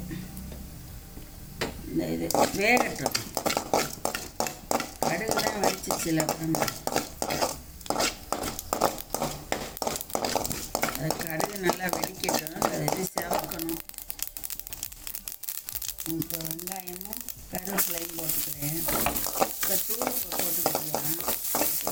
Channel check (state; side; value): identical; both; correlation 1.00